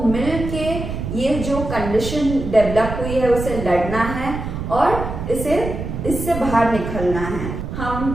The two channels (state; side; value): noise; right; rumble, 6 dB below the sound